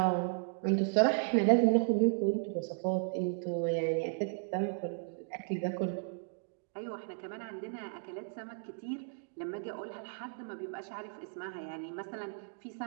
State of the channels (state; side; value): silent; left; digital silence